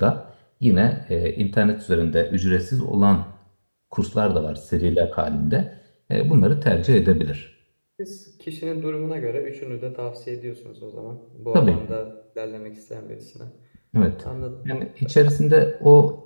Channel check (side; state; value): both; inverted; correlation -1.00